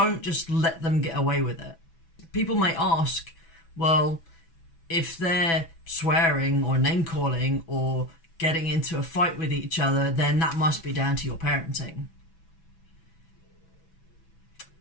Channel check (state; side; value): late; right; 6.0 ms